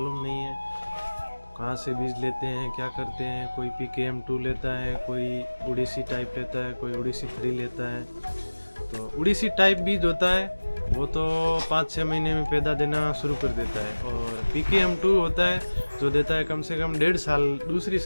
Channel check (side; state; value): both; inverted; correlation -1.00